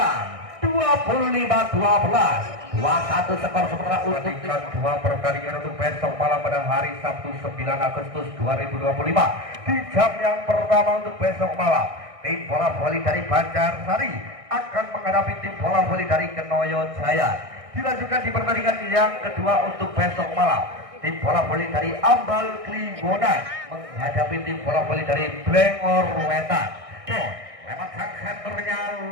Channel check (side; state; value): left; late; 1.6 ms